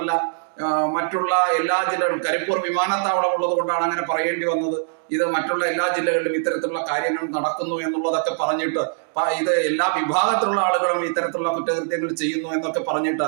മറ്റുള്ള എല്ലാ ജില്ലകളും, കരിപ്പൂർ വിമാനത്താവളം ഉള്ളത് കൊണ്ടാണ് അങ്ങനെ പറയേണ്ടി വന്നത്. ഇത് മറ്റുള്ള എല്ലാ ജില്ലകളിലും ഇത്തരത്തിലുള്ള കാര്യങ്ങൾ നടക്കുന്നു എന്നുള്ളതൊക്കെ പറഞ്ഞിട്ട്, ഇത് എല്ലാ വിഭാഗത്തിലുള്ള ആളുകളും ഇത്തരത്തിലുള്ള കുറ്റകൃത്യങ്ങൾ ചെയ്യുന്നു എന്നൊക്കെ പറഞ്ഞിട്ട്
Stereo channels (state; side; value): silent; left; digital silence